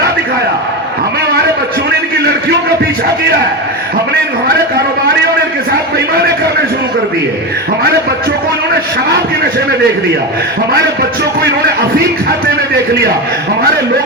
دکھایا؟ ہمارے بچوں نے ان کی لڑکیوں کا پیچھا کیا ہے، ہمارے کاروباریوں نے ان کے ساتھ بےایمانی کرنے شروع کر دی ہے، ہمارے بچوں کو انہوں نے شراب کے نشے میں دیکھ لیا، ہمارے بچوں کو انہوں نے افیم کھاتے میں دیکھ لیا، ہمارے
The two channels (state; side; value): normal; both; correlation 0.18